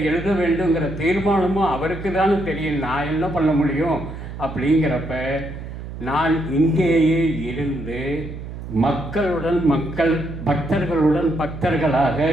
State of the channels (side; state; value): right; noise; hum, 10 dB below the sound